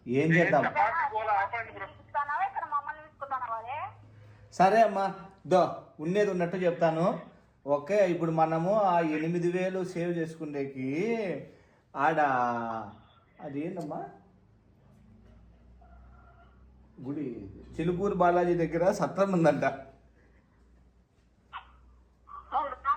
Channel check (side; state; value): both; identical; correlation 1.00